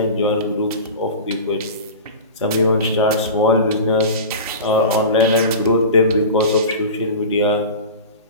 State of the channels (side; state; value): both; inverted; correlation -0.31